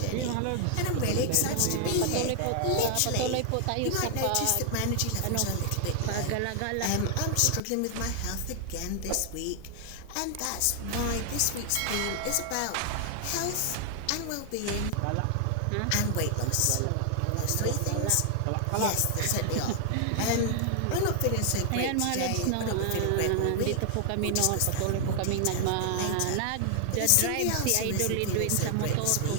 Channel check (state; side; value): different; both; correlation 0.00